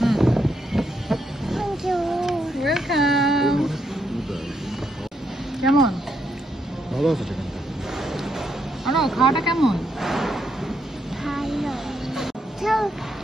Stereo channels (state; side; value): normal; both; correlation 0.78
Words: Thank you. Welcome. কেমন? ভালো আছে চিকেনটা। আনো খাওয়াটা কেমন? Hello. Tell